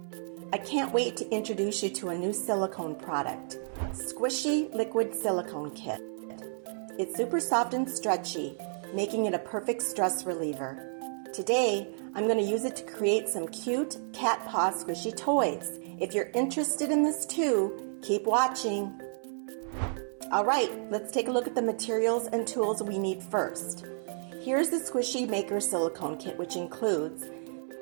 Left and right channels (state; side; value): silent; left; 57 dB below the other